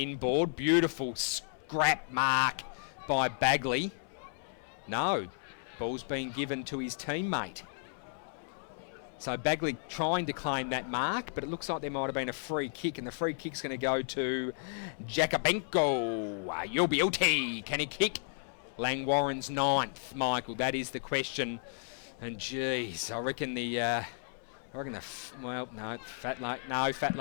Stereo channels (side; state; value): right; silent; digital silence